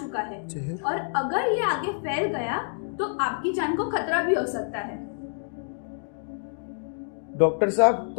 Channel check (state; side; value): silent; right; digital silence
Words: है और अगर ये आगे फैल गया तो आपकी जान को खतरा भी हो सकता है। डॉक्टर साहब